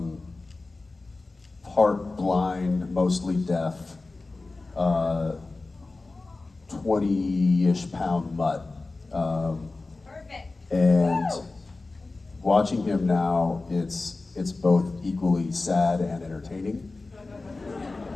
part blind, mostly deaf, 20-ish pound mutt. Perfect. And watching him now, it's both equally sad and entertaining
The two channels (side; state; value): right; quieter; 3.4 dB